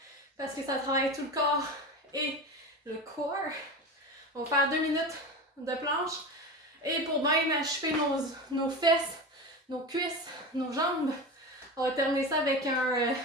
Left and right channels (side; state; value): both; normal; correlation 0.26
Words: parce que ça travaille tout le corps et le corps. On va faire 2 minutes de planche. Et pour bien achever nos fesses, nos cuisses, nos jambes, on va terminer ça avec un